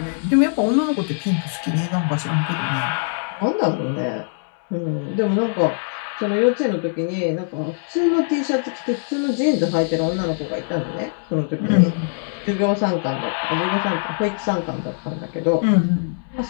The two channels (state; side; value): silent; right; 64 dB below the other